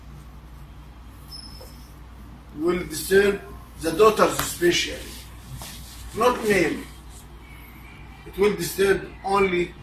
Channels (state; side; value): identical; both; correlation 1.00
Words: Will disturb the daughters especially. Not male. It will disturb only